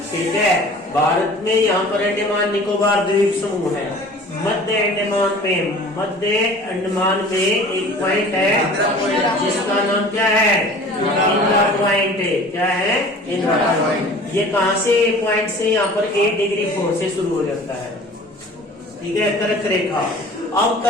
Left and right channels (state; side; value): normal; both; correlation 0.45